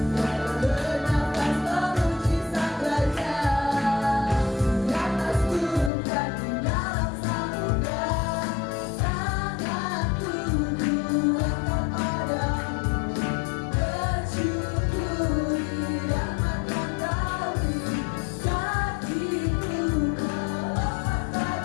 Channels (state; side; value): drops out; right; at 5.9 s